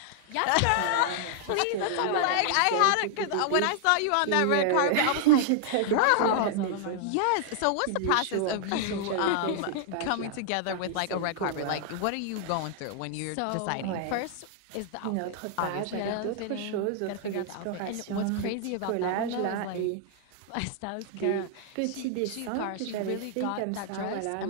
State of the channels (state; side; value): different; both; correlation -0.01